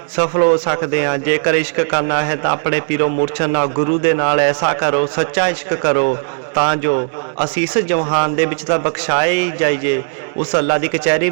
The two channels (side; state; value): left; silent; digital silence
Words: ਸਫਲ ਹੋ ਸਕਦੇ ਹਾਂ। ਜੇਕਰ ਇਸ਼ਕ ਕਰਨਾ ਹੈ ਤਾਂ ਆਪਣੇ ਪੀਰੋ ਮੁਰਸ਼ਦ ਨਾਲ, ਗੁਰੂ ਦੇ ਨਾਲ ਐਸਾ ਕਰੋ, ਸੱਚਾ ਇਸ਼ਕ ਕਰੋ, ਤਾਂ ਜੋ ਅਸੀਂ ਇਸ ਜਹਾਨ ਦੇ ਵਿੱਚ ਤਾਂ ਬਖਸ਼ਾਏ ਹੀ ਜਾਈਏ, ਉਸ ਅੱਲਾ ਦੀ ਕਚਹਿਰੀ